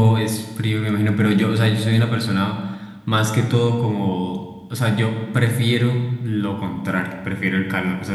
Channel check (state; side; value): identical; both; correlation 1.00